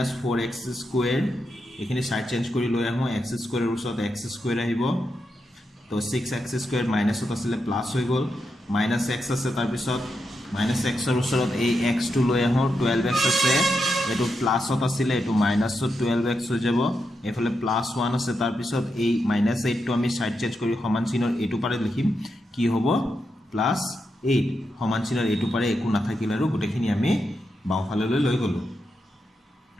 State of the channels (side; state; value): both; normal; correlation 0.85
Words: এখিনি সাইড চেঞ্জ কৰি লৈ আহো x² ৰ ওচৰত x² আহিব তো 6x² মাইনাসত আছিল প্লাস হৈ গল -x আছে তাৰ পিছত -x ৰ ওচৰত এই x টো লৈ আহো 12x আছে এটো প্লাসত আছিল এটো মাইনাসত 12x হৈ যাব এফালে +1 আছে তাৰ পিছত এই -8 টো আমি সাইড চেঞ্জ কৰি সমান চিনৰ এটো পাৰে লিখিম কি হ'ব +8 সমান চিনৰ এটো পাৰে একো নাথাকিল আৰু গুটেখিনি আমি বাওফাললৈ লৈ গলো